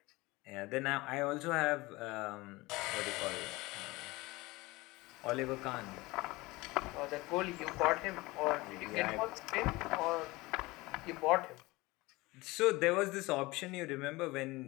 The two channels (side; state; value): right; quieter; 21.7 dB